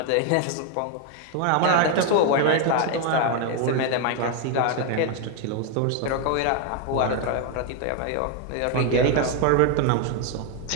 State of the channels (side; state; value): both; different; correlation 0.00